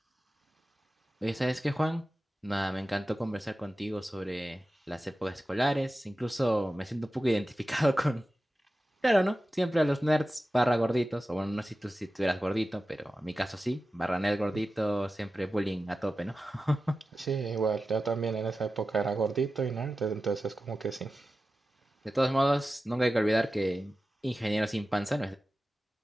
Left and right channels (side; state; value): both; normal; correlation 0.94